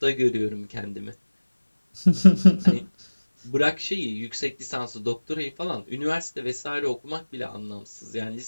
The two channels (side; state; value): both; inverted; correlation -1.00